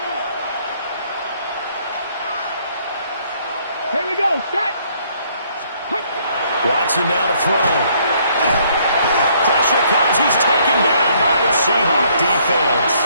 Here we go. Set. Watson now to throw. Pressure comes. He's taken down by the Seahawk defense.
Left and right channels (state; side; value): inverted; both; correlation -0.66